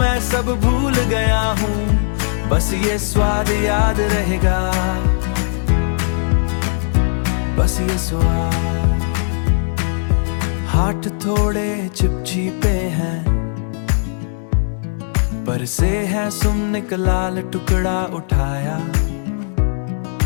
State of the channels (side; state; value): right; silent; digital silence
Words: सब भूल गया हूँ, बस ये स्वाद याद रहेगा, बस ये स्वाद। हाथ थोड़े चिपचिपे हैं, पर से है सुमने का लाल टुकड़ा उठाया,